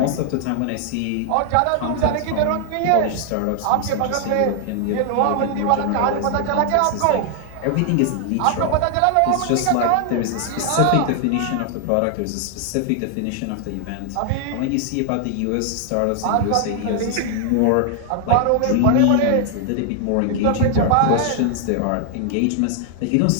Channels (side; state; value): both; different; correlation 0.00